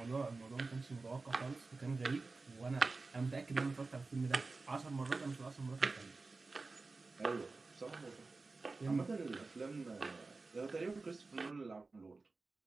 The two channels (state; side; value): quieter; left; 3.7 dB